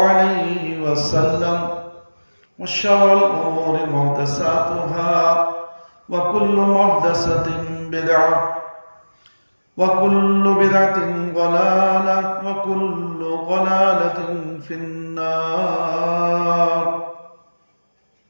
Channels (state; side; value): inverted; both; correlation -1.00